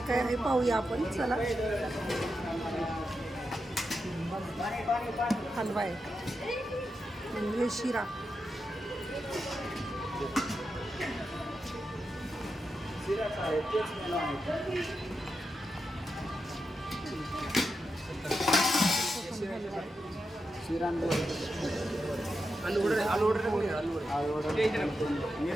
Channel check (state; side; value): normal; both; correlation 0.87